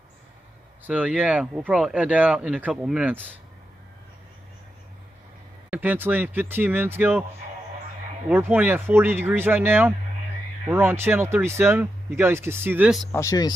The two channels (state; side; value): normal; both; correlation 0.87